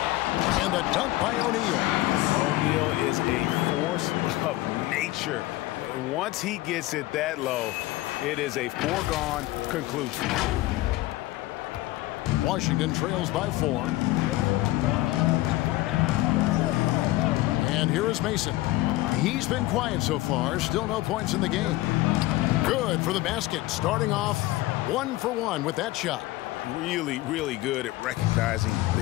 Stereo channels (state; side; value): quieter; right; 17.9 dB